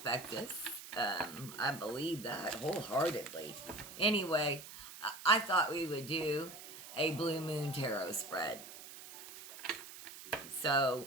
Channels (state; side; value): noise; right; hiss, 14 dB below the sound